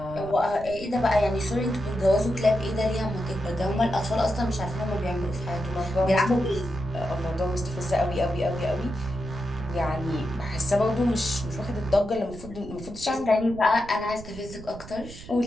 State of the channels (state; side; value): noise; right; rumble, 15 dB below the sound